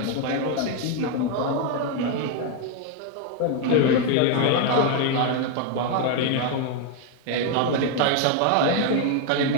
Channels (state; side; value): different; both; correlation 0.01